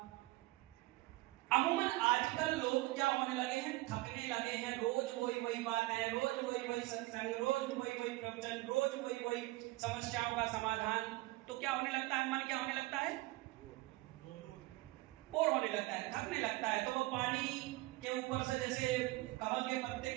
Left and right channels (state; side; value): quieter; left; 20.4 dB